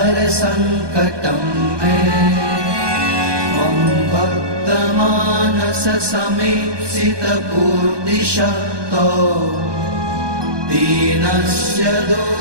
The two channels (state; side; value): late; left; 1.2 ms